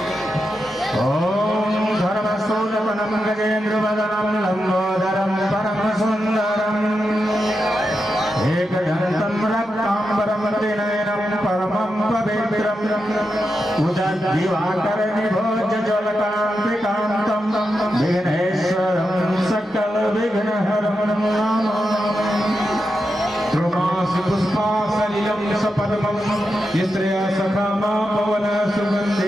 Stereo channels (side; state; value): both; normal; correlation 0.88